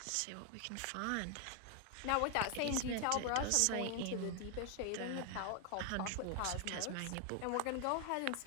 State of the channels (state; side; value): different; both; correlation 0.00